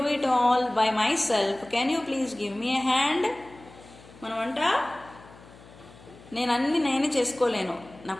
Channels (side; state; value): left; noise; hum, 22 dB below the sound